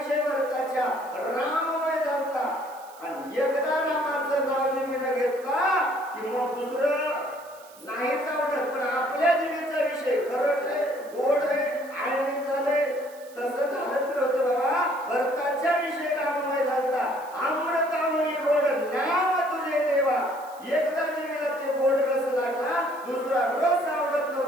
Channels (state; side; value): noise; right; hiss, 23 dB below the sound